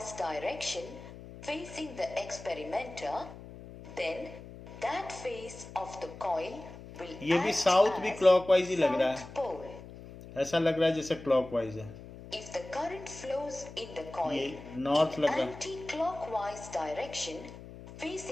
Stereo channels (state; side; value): noise; left; hum, 15 dB below the sound